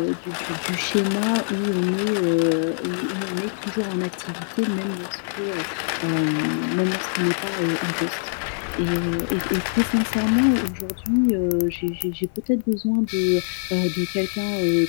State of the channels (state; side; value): silent; right; 63 dB below the other